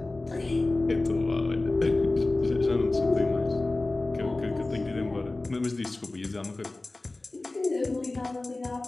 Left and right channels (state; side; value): quieter; right; 3.0 dB